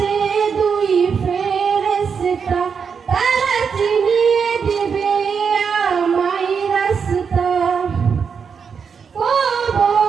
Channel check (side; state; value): left; quieter; 6.3 dB